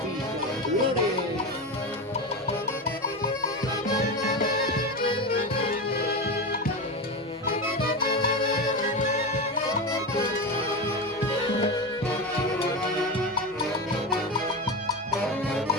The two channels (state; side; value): normal; both; correlation 0.20